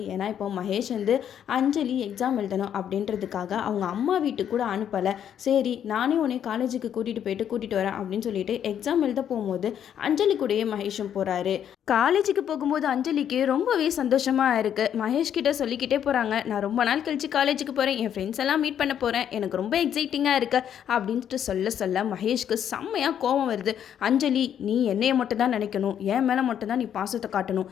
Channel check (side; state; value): right; quieter; 9.4 dB